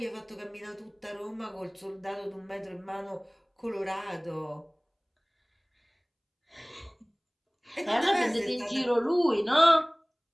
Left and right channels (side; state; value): both; identical; correlation 1.00